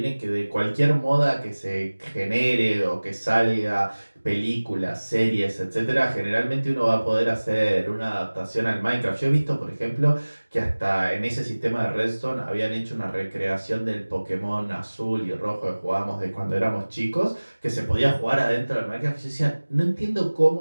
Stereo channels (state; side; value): inverted; both; correlation -1.00